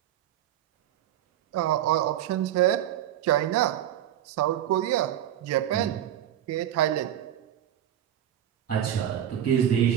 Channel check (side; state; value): left; quieter; 11.2 dB